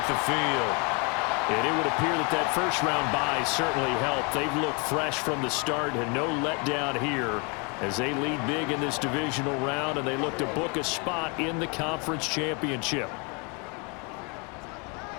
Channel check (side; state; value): right; quieter; 32.8 dB